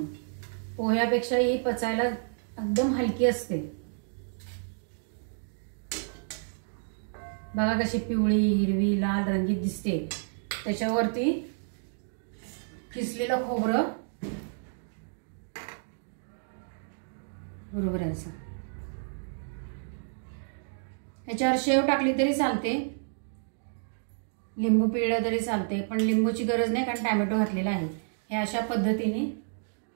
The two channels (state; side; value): silent; left; digital silence